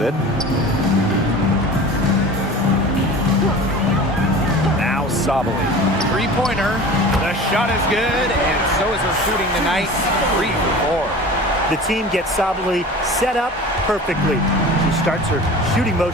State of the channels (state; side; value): normal; both; correlation 0.38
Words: it. Now Sabali. 3-pointer. The shot is good, and so is her shooting tonight. 3 for 4. The team gets Sabali set up perfectly. She starts her shooting